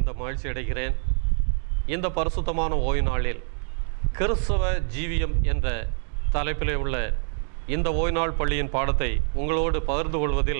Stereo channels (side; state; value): left; silent; digital silence